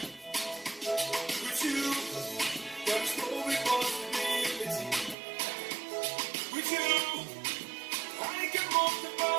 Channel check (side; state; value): left; drops out; at 5.2 s